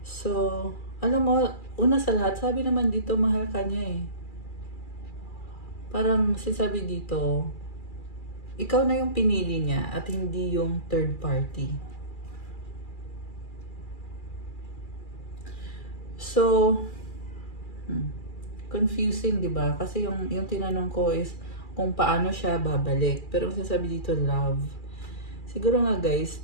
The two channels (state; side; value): late; right; 2.4 ms